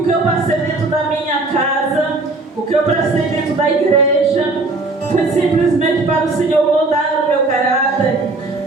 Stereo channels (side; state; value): left; quieter; 3.2 dB